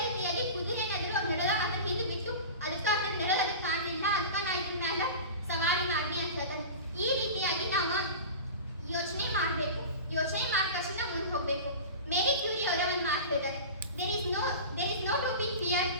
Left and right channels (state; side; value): inverted; both; correlation -0.32